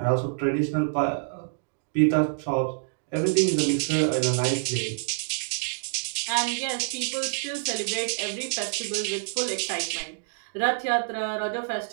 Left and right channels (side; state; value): left; silent; digital silence